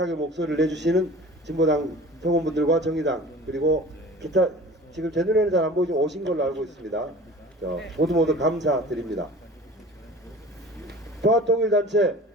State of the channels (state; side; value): normal; both; correlation 0.42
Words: 목소리를 내주시는 진보당 성원분들과 정의당 그리고 기타 지금 제 눈에는 잘 안 보이지만 오신 걸로 알고 있습니다. 모두 감사드립니다. 평화통일단체,